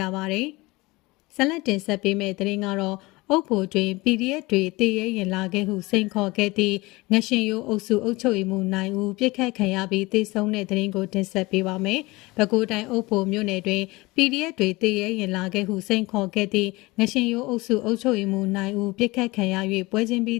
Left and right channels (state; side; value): quieter; right; 22.2 dB